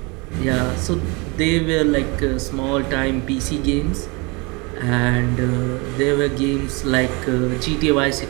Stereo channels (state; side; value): quieter; left; 28.4 dB